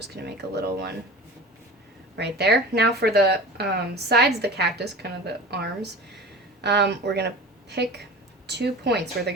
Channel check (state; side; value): normal; both; correlation 0.36